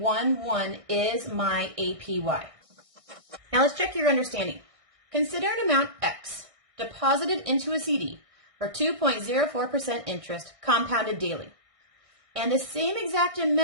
is my APY. Now let's check your understanding. Consider an amount X deposited into a CD for 2.04% interest compounded daily, and the same exact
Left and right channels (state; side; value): late; left; 1.6 ms